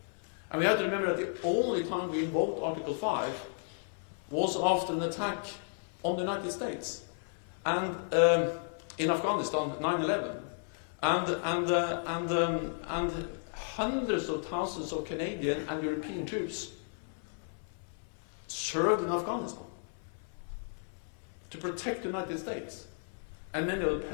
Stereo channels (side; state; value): right; silent; 55 dB below the other